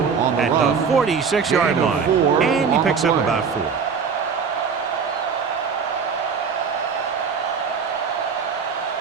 at the 46-yard line. And he picks up about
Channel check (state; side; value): quieter; left; 6.0 dB